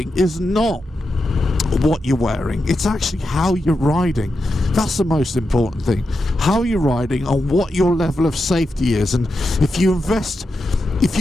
is not what you're wearing, it's actually how you're riding. That's the most important thing, how you're riding and what your level of safety is. And if you invested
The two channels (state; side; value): normal; both; correlation 0.88